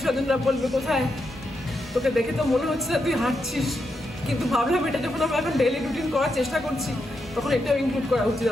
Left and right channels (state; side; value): normal; both; correlation 0.84